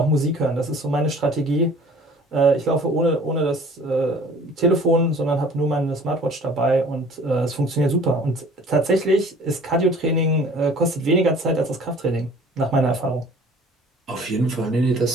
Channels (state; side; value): normal; both; correlation 0.49